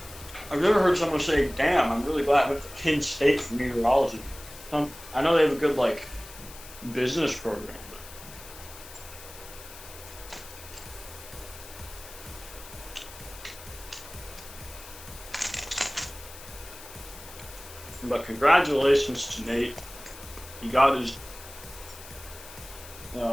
I've never heard someone say, "Damn, I'm really glad I went to Penn State for meteorology." I know they have a good business program. But congratulations to Nate. He got his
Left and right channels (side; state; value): left; noise; hiss, 16 dB below the sound